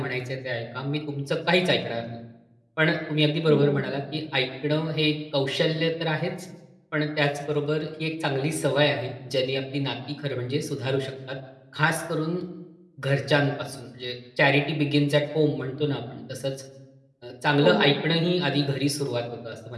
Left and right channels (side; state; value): both; identical; correlation 1.00